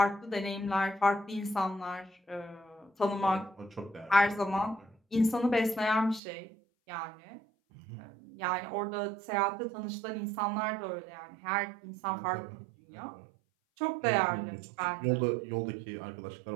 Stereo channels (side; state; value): left; drops out; at 6.2 s